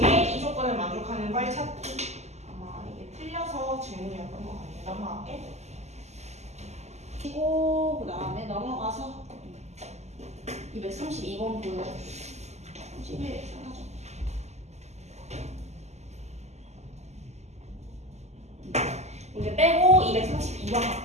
이 조건을 만족하는 걸 찾기. 아마 이게 틀려서 질문이었던 것 같아. 넘어갈게. 그리고 그 다음에 넘어가서 232번 보여. 11 사라져. 문제 빼고 232번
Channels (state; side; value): late; left; 0.33 ms